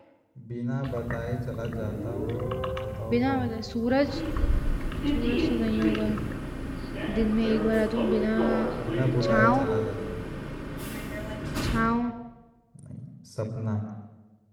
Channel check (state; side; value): identical; both; correlation 1.00